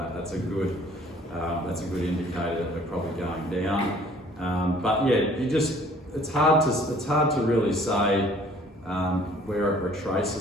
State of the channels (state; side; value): normal; both; correlation 0.55